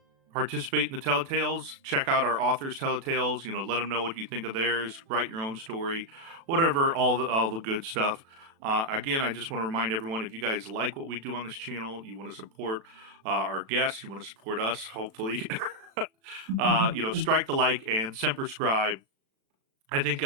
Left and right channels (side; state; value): left; late; 36 ms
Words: Participate in the Telletales. Check out our authors' Telletales. Let them know what you think of theirs. Write your own story, whatever. All the good stuff. Again, I just want to remind everyone, if you guys like what we do on this channel, you want to support our guests, you want to support us, hopefully, strike the like and semper scribe. I think